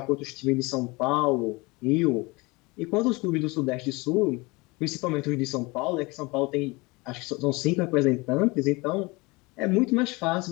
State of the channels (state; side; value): quieter; right; 24.8 dB